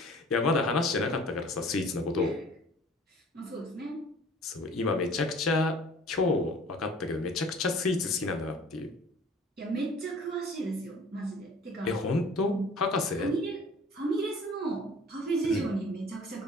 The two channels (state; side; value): normal; both; correlation 0.49